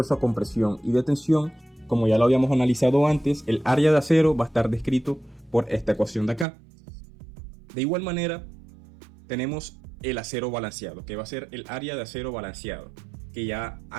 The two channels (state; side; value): drops out; left; at 6.5 s